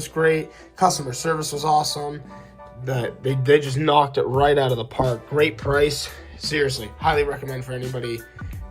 great. Customer service was awesome. They just knocked it right out of the park. Great price. Seriously, highly recommend for anybody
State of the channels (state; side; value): identical; both; correlation 1.00